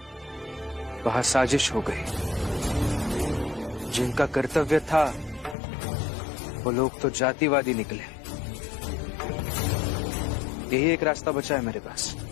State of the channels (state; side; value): drops out; right; at 5.6 s